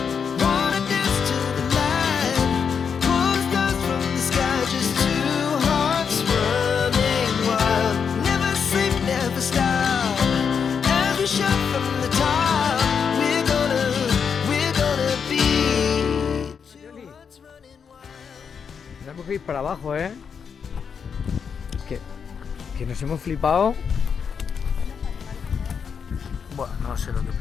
wanna dance to the light, pull stars from the sky, just two hearts running wild. Never sleep, never stop, as we shout from the top. We're gonna be two hearts running wild. Tenemos que ir para abajo, ¿eh? Que nos hemos flipado. Bueno, no sé lo que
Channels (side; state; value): right; quieter; 6.6 dB